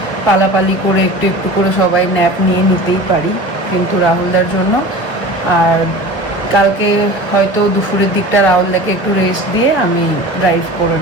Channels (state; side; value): late; right; 1.0 ms